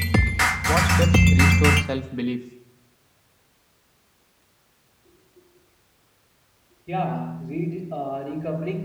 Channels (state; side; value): identical; both; correlation 1.00